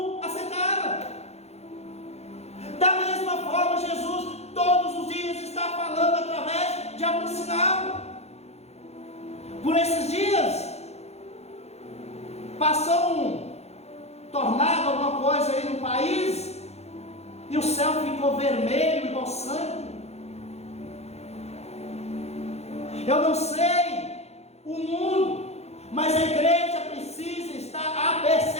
aceitaram. Da mesma forma, Jesus todos os dias está falando através de algum sinal. Por esses dias passou um tornado, alguma coisa aí no país, e o céu ficou vermelho igual sangue. Eu não sei o mundo, mas a igreja precisa estar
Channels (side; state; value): right; late; 0.31 ms